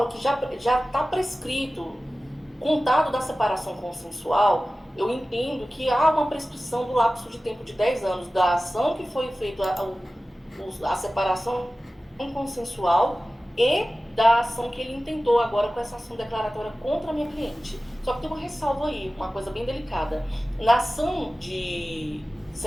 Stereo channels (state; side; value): normal; both; correlation 0.96